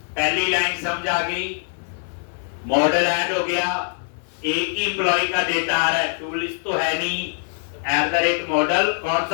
पहली लाइन समझ आ गई, मॉडल ऐड हो गया, एक ही एम्प्लॉय का डेटा आ रहा है, टूल लिस्ट तो है नहीं। @ मॉडल, कौन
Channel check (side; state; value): right; silent; 61 dB below the other